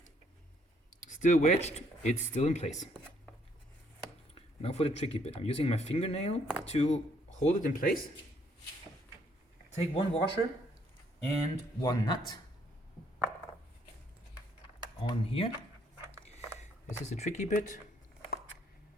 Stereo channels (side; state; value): both; normal; correlation 0.68